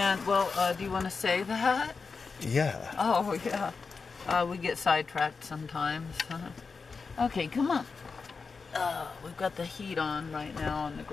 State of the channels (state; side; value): quieter; right; 4.8 dB